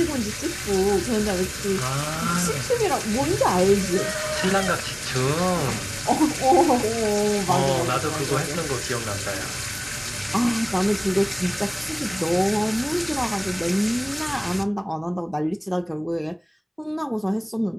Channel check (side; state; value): both; identical; correlation 1.00